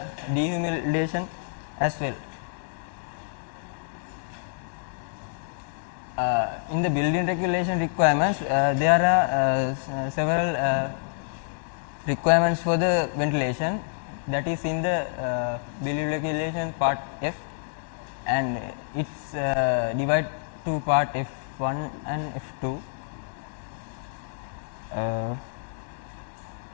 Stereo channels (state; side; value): silent; right; 60 dB below the other